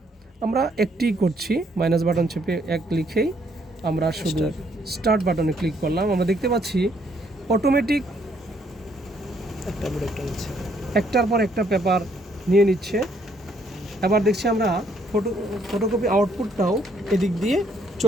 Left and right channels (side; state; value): both; normal; correlation 0.68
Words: আমরা একটি করছি, মাইনাস বাটন চেপে 1 লিখেই আমরা শুধু স্টার্ট বাটনে ক্লিক করলাম। আমরা দেখতে পাচ্ছি অটোমেটিক একটার পর একটা পেপার নিয়ে নিচ্ছে। এবার দেখছি আমরা ফটোকপি আউটপুটটাও এদিক দিয়ে